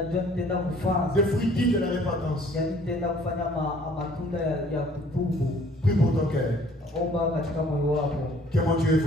des fruits dignes de la repentance. Prie pour ton cœur. Que mon Dieu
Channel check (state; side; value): normal; both; correlation 0.56